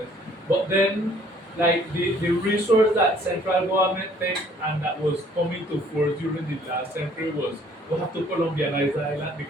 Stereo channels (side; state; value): both; normal; correlation 0.59